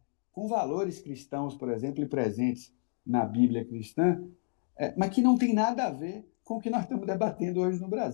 com valores cristãos, por exemplo, e presentes na Bíblia cristã, mas que não tem nada a ver com o que nós estamos debatendo hoje no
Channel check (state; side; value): silent; right; 57 dB below the other